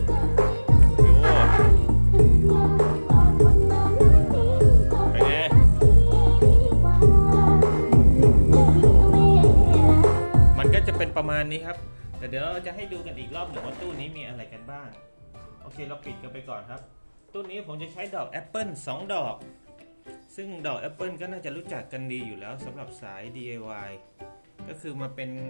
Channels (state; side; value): inverted; both; correlation -1.00